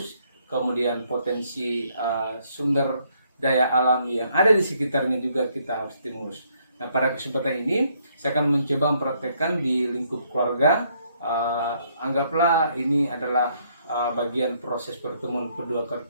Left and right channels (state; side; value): inverted; both; correlation -0.70